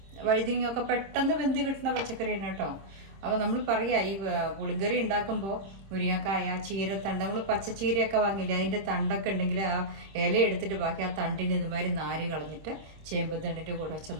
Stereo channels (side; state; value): left; late; 26 ms